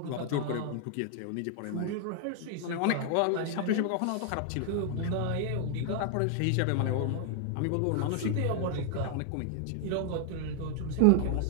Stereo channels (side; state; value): both; different; correlation 0.00